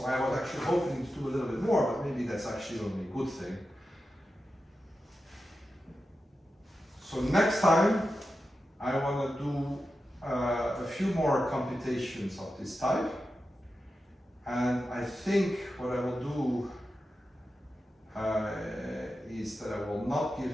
I was actually hoping to do a little bit more, but maybe that's actually only a good thing. So next time I want to do a few more computations of this type, and I think what I will do is that I will not give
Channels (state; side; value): normal; both; correlation 0.91